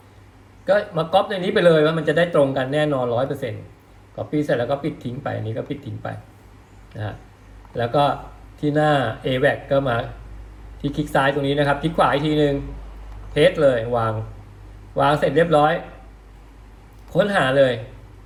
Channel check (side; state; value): both; identical; correlation 1.00